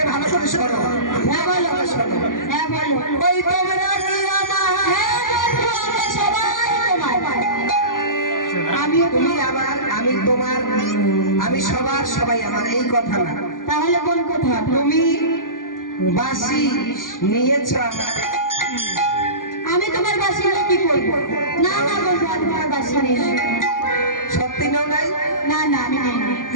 ভালো করে শোনো। হ্যাঁ বলো। শোনো, হ্যাঁ বলো। ওই তোমরা কি আমার? হ্যাঁ বন্ধু, আমরা সবাই তোমার। তুমি আমার, আমি তোমার, আমি সবার, সবাই আমার, এই কথা না। তাহলে কোন কথা? তুমি বাসি নিয়েছ আমার। আমি তোমার বাসি নিয়ে কি করবো? না না বন্ধু, আমি তোমার বাসি নিয়ে। সত্যি নাও নাই? না না, আমি নেই।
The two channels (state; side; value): late; right; 0.89 ms